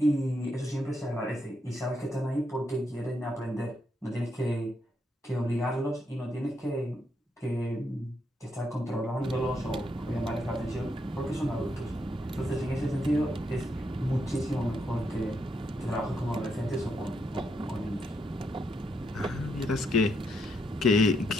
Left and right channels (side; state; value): both; normal; correlation 0.78